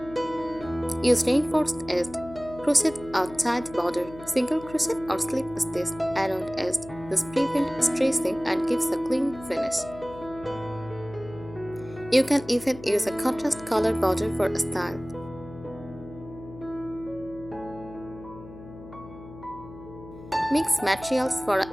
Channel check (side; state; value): left; noise; hum, 16 dB below the sound